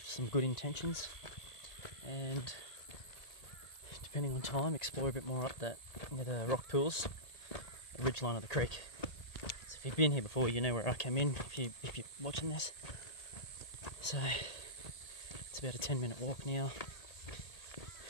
some good intentions, and depending on time, explore a bit more up that near the rock pools, the ridge line of the creek. So if you've been here before, you know where I came in if you're watching this. So it's about a 10-minute walk now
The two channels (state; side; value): late; right; 1.7 ms